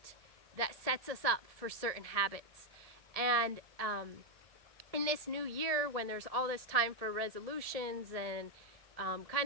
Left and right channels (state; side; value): late; left; 1.7 ms